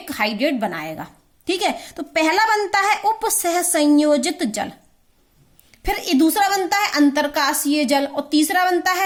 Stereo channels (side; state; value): both; identical; correlation 1.00